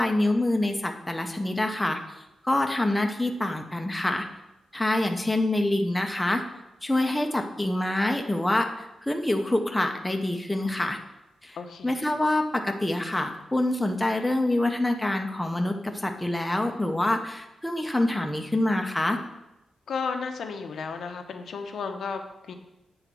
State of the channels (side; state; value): both; normal; correlation 0.95